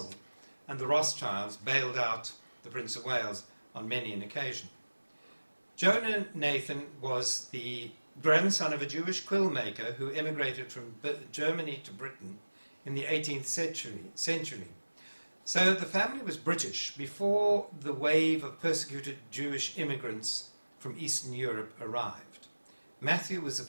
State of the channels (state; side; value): inverted; both; correlation -1.00